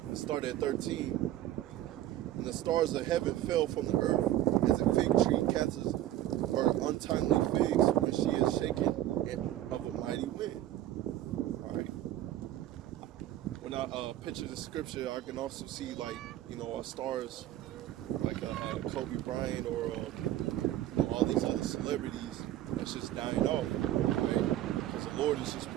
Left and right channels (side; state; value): left; quieter; 13.3 dB